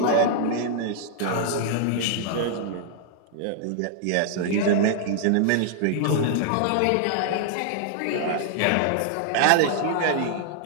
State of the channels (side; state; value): both; different; correlation -0.01